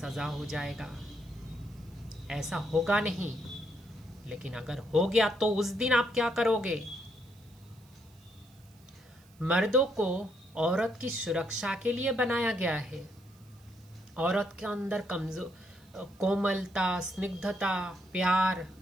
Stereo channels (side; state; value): right; noise; hiss, 29 dB below the sound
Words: हो जाएगा। ऐसा होगा नहीं, लेकिन अगर हो गया तो उस दिन आप क्या करोगे? मर्दों को औरत की सुरक्षा के लिए बनाया गया है। औरत के अंदर कोमलता, स्निग्धता, प्यार,